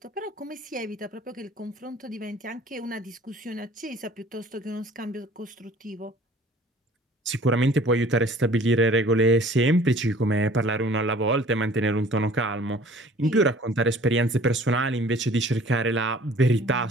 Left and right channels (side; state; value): both; normal; correlation 0.51